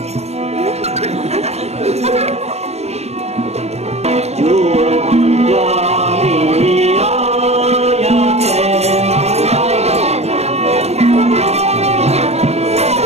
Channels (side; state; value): left; late; 0.31 ms